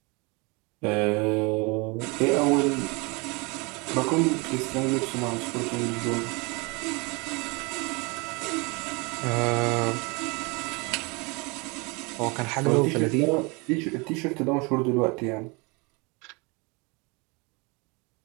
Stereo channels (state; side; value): quieter; left; 28.5 dB